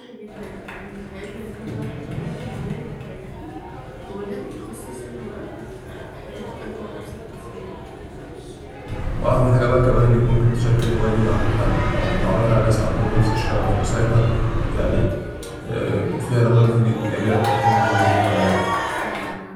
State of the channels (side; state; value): both; identical; correlation 1.00